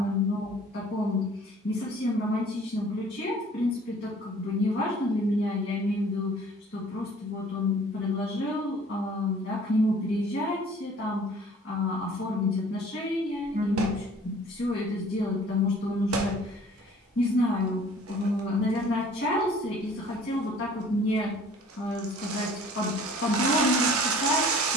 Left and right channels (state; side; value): normal; both; correlation 0.51